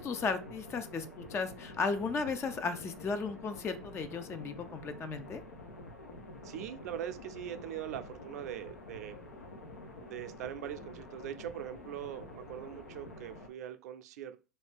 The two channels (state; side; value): normal; both; correlation 0.42